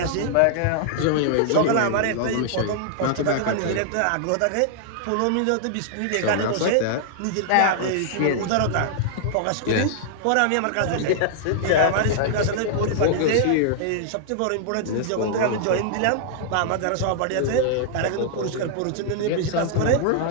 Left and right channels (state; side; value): different; both; correlation -0.01